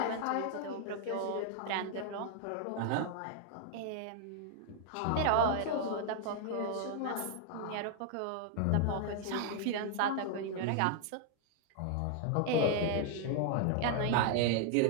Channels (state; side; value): different; both; correlation 0.00